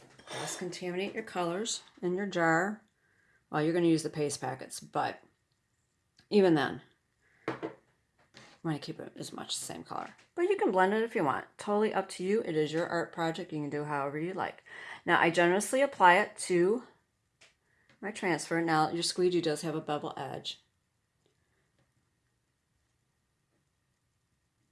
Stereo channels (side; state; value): both; identical; correlation 1.00